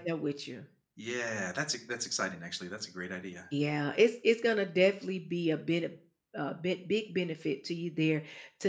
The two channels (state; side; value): identical; both; correlation 1.00